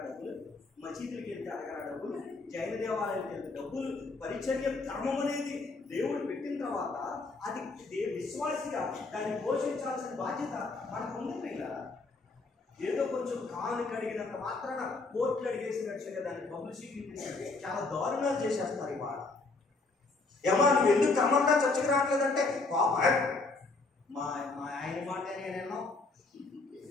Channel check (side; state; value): right; quieter; 3.6 dB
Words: డబ్బులు, మసీదులకి వెళ్తే అడగరా డబ్బులు, జైన దేవాలయానికి వెళ్తే డబ్బులు. పరిచర్య ధర్మం అనేది దేవుడు పెట్టిన తర్వాత అది విశ్వాసిగా దాన్ని పోషించాల్సిన బాధ్యత మనకు ఉంది. ఇలా ఏదో కొంచెం కాలు కడిగినంత మాత్రాన కోర్టులు అడిగేసినట్టుగా దాన్ని పబ్లిసిటీ చాలా దారుణాలు చేసేస్తారు. ఇవాళ ఏమా నువ్వు ఎందుకు క్రమంగా చర్చకు రావట్లేదంటే మా ఆయన మాట నేనేమో